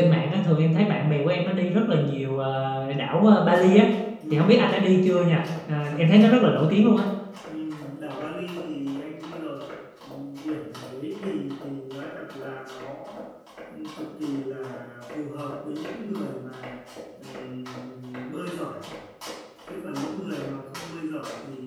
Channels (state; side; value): identical; both; correlation 1.00